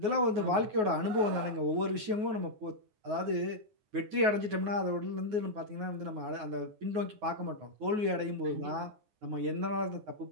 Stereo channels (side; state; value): left; late; 9.5 ms